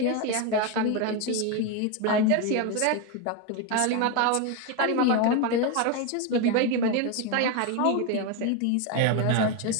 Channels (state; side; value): different; both; correlation 0.02